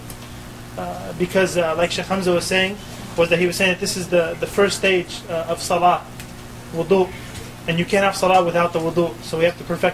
Because like Shaykh Hamza was saying, he was saying that this is the first stage of salah, wudu. And you can't have salah without the wudu. So we have to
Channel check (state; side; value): identical; both; correlation 1.00